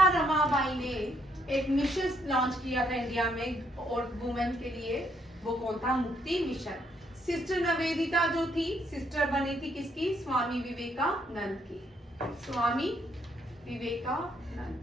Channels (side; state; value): both; normal; correlation 0.72